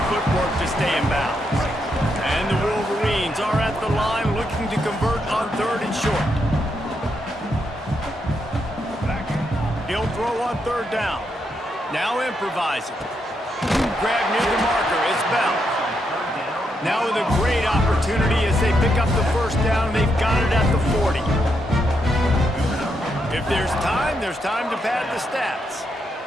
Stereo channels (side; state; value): both; normal; correlation 0.80